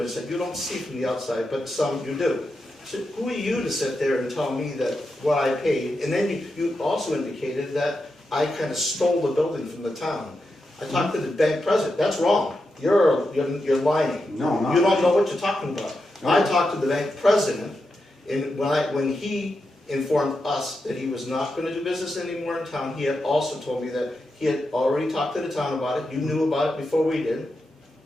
that you don't see from the outside, but some you do. So who are you to sit there and tell me that what I paid? And then you also indicated that I kind of stole the building from the town. I talked to the bank president. That's wrong. You're lying. No, I'm not. You don't know what you're talking about. I talked to the bank president, and when he informed us that he was not going to do business anymore in town, he had also told me that he had already talked to the town about it, you knew about it before we did.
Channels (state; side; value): normal; both; correlation 0.87